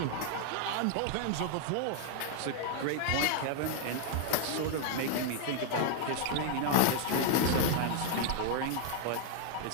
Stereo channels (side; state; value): both; different; correlation 0.00